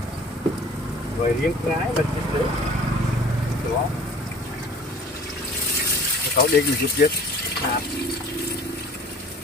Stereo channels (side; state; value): both; normal; correlation 0.48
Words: rồi riêng ngái mình chinh được đó cậu điện mình giúp chết